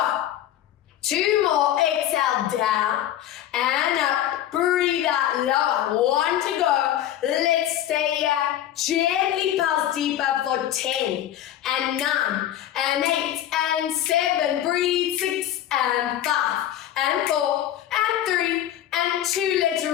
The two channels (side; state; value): right; quieter; 11.9 dB